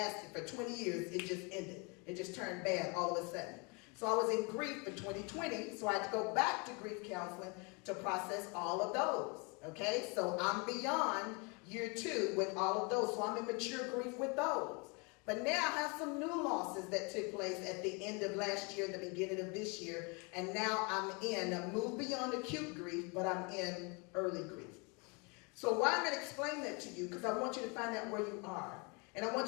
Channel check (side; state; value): right; quieter; 31.3 dB